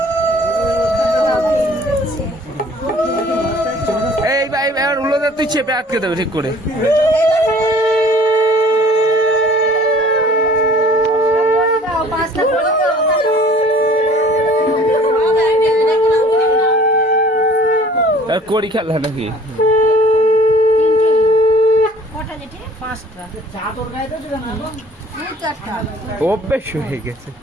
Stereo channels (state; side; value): normal; both; correlation 0.51